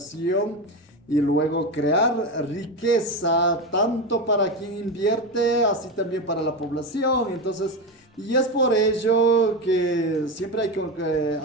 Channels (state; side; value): normal; both; correlation 0.17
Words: y luego crear riqueza tanto para quien invierte, así también para la población. Entonces, y es por ello que siempre hay que